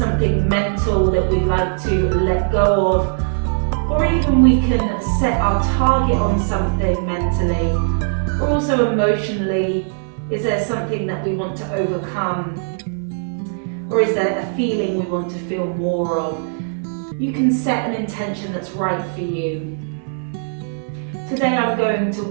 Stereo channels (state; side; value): silent; left; 61 dB below the other